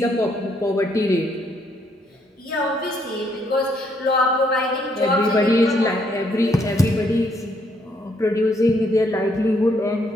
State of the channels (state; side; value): normal; both; correlation 0.72